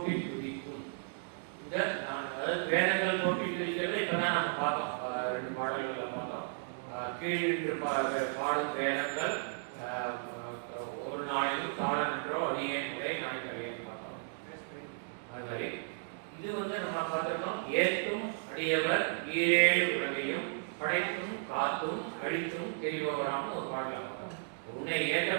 பிடிக்கும். இந்த வேதங்கள் போட்டி பிடிக்கிறது இப்பதான் நம்ம பார்த்தோம். 2 பாடல்களை பார்த்தோம். கீழின்று பாடும் வேதங்கள் ஒரு நாளைக்கும் காலம் என்றோ அடியே முறை நாளைக்கு பார்த்தோம். அது மாதிரி இது வந்து நம்ம பார்த்திருக்கோம். ஏற்றும் அடியவர் 7 உலகையும் படைத்தும் காத்தும் அழித்தும் தெரிபவராக ஒரு பாடலாம் பார்த்தோம். உன்னை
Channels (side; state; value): left; silent; digital silence